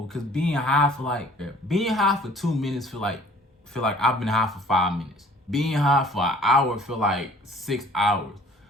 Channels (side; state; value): both; normal; correlation 0.53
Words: Cause being high for 2 minutes feel like I've been high for 5 minutes. Being high for an hour feel like 6 hours.